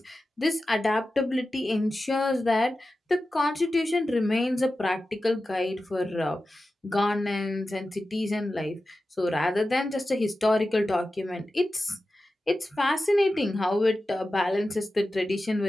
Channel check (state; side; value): normal; both; correlation 0.93